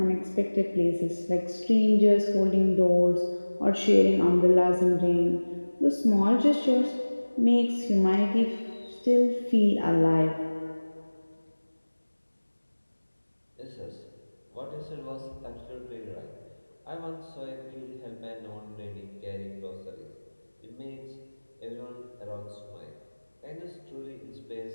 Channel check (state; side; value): inverted; both; correlation -1.00